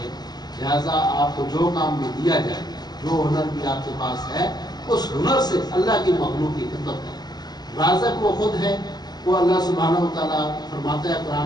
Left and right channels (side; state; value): right; late; 0.20 ms